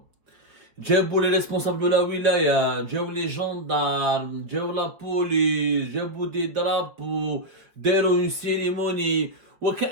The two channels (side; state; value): left; late; 4.7 ms